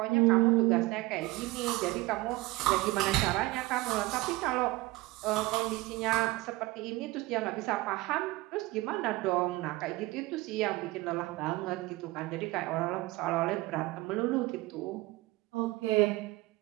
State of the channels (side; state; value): left; quieter; 20.2 dB